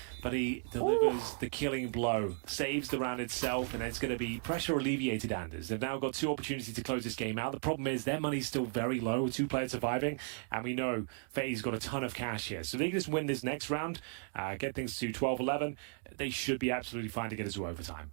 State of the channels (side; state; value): left; silent; 54 dB below the other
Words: but he delivers the killing blow, saves the round itself, and it's going to be pressure alleviated, Anders. They've now got 2 opportunities to close this game out. The problem is their money's still very low with 2 players surviving, and we know FaZe got a ton of cash here. So if they can just win this next round, get things to 12-11, they should be absolutely fine to get us to overtime.